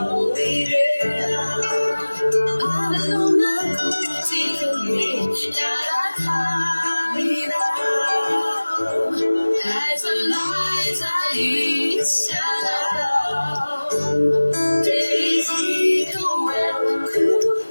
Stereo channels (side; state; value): both; inverted; correlation -1.00